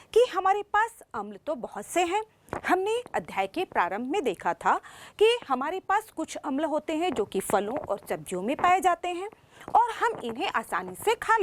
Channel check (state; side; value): identical; both; correlation 1.00